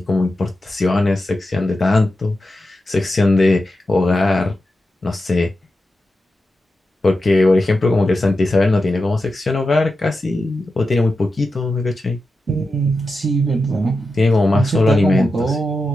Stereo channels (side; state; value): both; normal; correlation 0.90